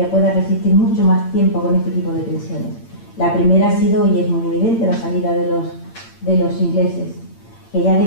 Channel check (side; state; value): right; late; 8.8 ms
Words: pueda resistir mucho más tiempo con este tipo de tensiones. La primera ha sido, y es muy evidente, la salida de los ingleses, que ya